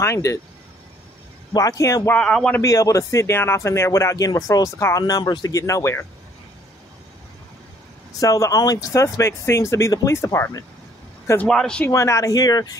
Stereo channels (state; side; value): normal; both; correlation 0.62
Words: it? Why I want to be able to sit down off in there without getting referrals to call numbers to get nowhere. So the only suspect seems to be the police department. Because why does she run out of here